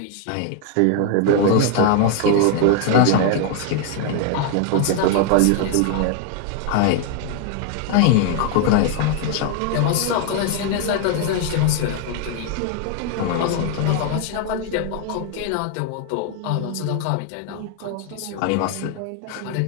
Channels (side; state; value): both; different; correlation 0.00